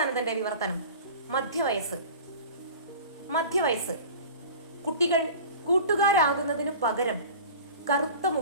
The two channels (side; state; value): both; inverted; correlation -0.39